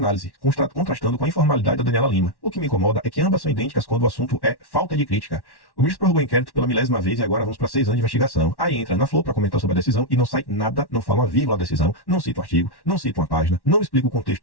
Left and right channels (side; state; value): right; late; 1.1 ms